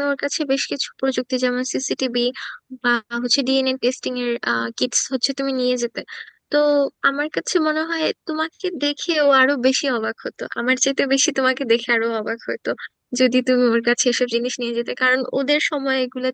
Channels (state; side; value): identical; both; correlation 1.00